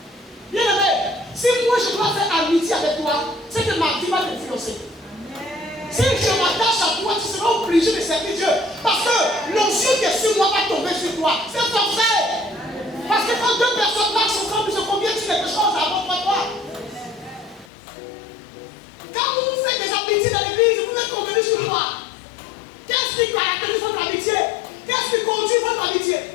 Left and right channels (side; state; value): right; drops out; at 17.7 s